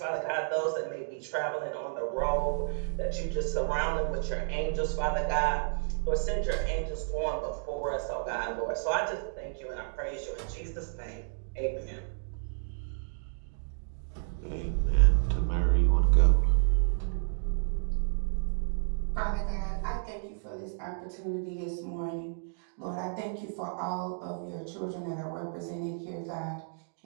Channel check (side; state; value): left; silent; digital silence